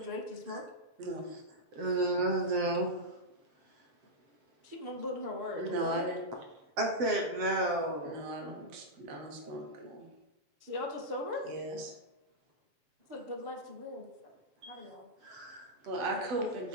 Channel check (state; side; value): late; left; 7.5 ms